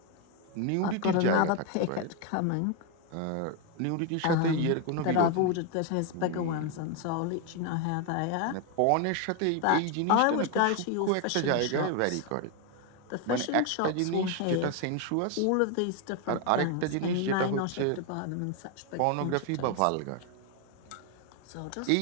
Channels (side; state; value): both; different; correlation 0.01